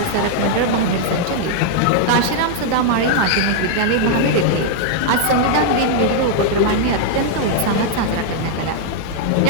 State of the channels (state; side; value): different; both; correlation -0.01